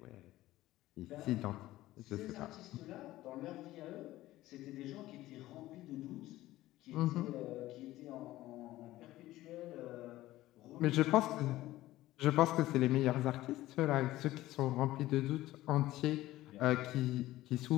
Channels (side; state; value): right; quieter; 16.2 dB